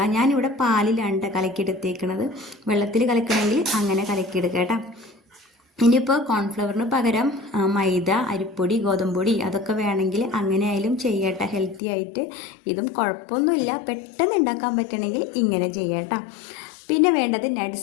ഞാനിവിടെ പാലിലാണ് കലക്കിയെടുത്തേക്കുന്നത്. വെള്ളത്തിൽ കലക്കണമെങ്കിൽ അങ്ങനെ കലക്കിയെടുക്കുക കേട്ടോ. ഇനിയിപ്പോൾ കോൺഫ്ലവറിന് പകരം മൈദ, അരിപ്പൊടി, ഗോതമ്പൊടി അതൊക്കെ വേണമെങ്കിൽ അങ്ങനെ ആയാലും ചെയ്യട്ടെ, ഹെൽത്തി ആയിട്ട്. ഇതും കുഴപ്പമൊന്നുമില്ല, പെട്ടെന്ന് ഉണ്ടാക്കാൻ പറ്റണമെങ്കിൽ ഇങ്ങനെ ചെയ്യട്ടോ. പിന്നെ വേണ്ടത്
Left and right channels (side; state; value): right; drops out; at 11.8 s